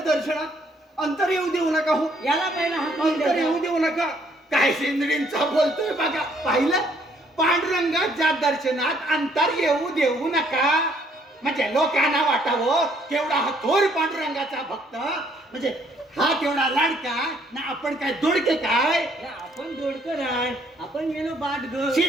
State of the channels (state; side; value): normal; both; correlation 0.66